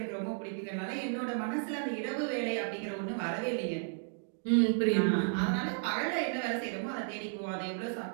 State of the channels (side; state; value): left; silent; 55 dB below the other